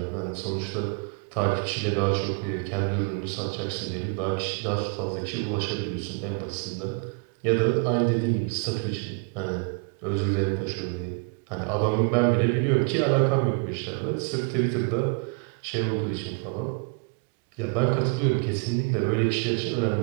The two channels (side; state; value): left; quieter; 34.9 dB